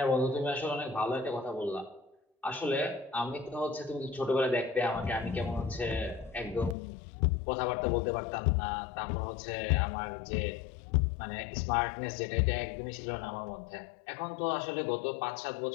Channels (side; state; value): right; drops out; at 6.8 s